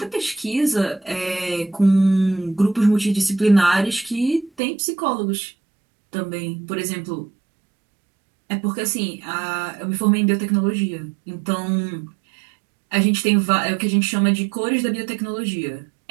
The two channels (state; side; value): drops out; left; at 4.6 s